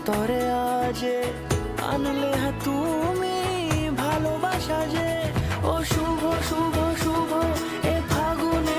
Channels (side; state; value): both; identical; correlation 1.00